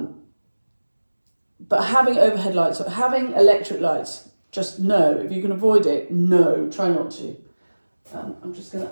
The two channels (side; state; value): both; inverted; correlation -1.00